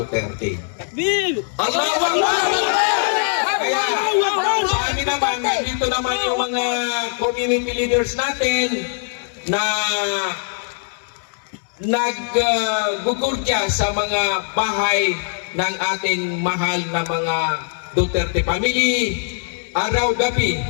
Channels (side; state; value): right; silent; digital silence